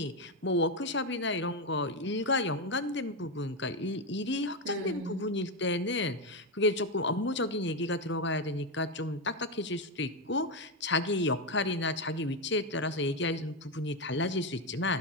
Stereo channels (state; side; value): normal; both; correlation 0.09